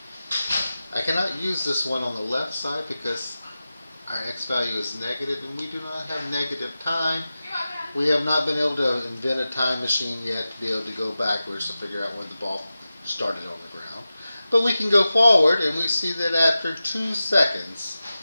I cannot use this one on the left side because our x value is negative, and we do not have negative time. We have not been able to invent a time machine yet to be able to go backwards to figure out when the ball started on the ground. But we can go forward, and we see that after 2 seconds,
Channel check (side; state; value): both; inverted; correlation -0.94